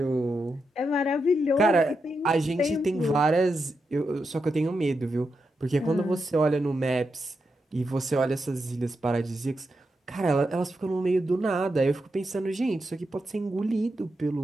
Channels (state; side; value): normal; both; correlation 0.86